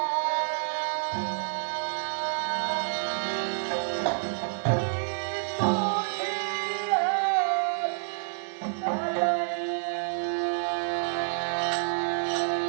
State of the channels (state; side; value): silent; left; digital silence